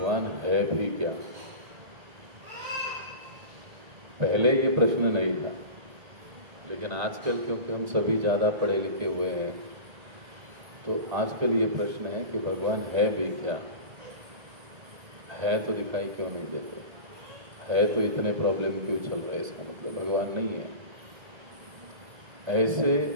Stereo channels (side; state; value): left; late; 1.8 ms